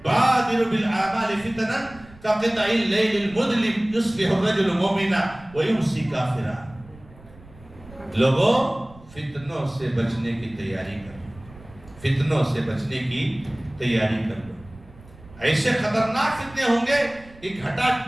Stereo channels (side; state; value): right; noise; rumble, 22 dB below the sound